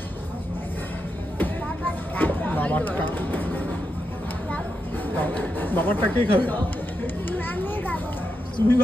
বাবারটা কে খাবে? তুমি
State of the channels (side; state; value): both; normal; correlation 0.85